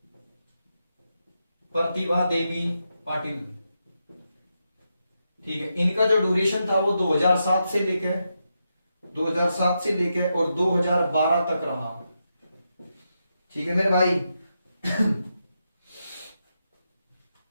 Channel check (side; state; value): both; inverted; correlation -0.85